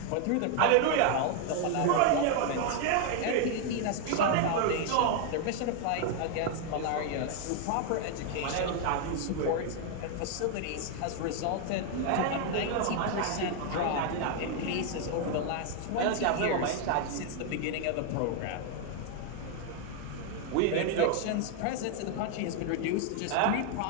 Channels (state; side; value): different; both; correlation 0.00